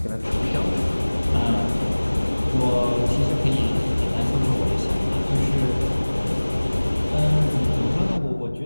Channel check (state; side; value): inverted; both; correlation -1.00